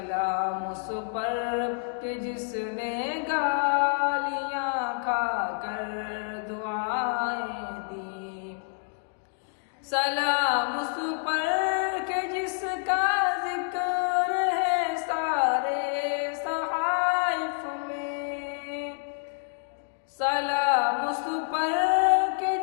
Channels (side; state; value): right; silent; 59 dB below the other